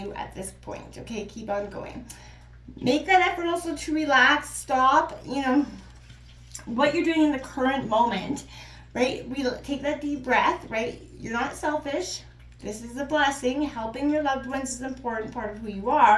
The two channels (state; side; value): identical; both; correlation 1.00